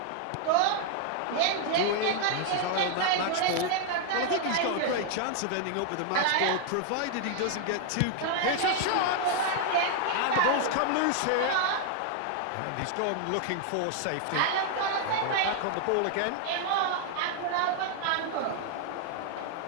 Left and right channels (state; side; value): different; both; correlation 0.00